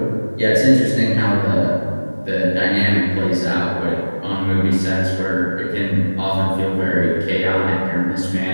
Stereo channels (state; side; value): inverted; both; correlation -1.00